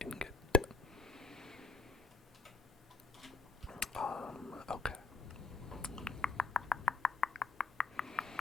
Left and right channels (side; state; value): right; quieter; 4.2 dB